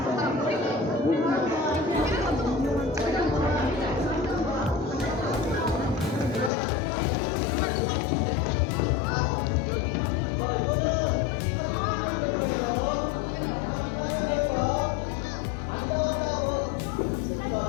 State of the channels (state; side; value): drops out; right; at 6.5 s